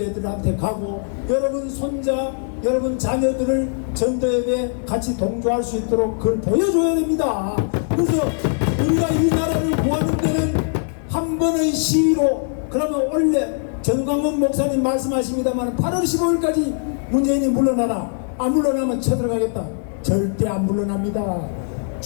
가고 여러분 손자 여러분 자녀들을 전도예배 같이 동조할 수 있도록 그걸 보여줘야 됩니다. 그래서 우리가 이 나라를 구하는 데는 한 번의 시위로, 그러면 원래 전광훈 목사님 말씀하십니다만 8월 15일까지 문재인이 물러나라, 안 물러나면 쳐들어가겠다. 절대 안 물러납니다.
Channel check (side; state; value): right; silent; 61 dB below the other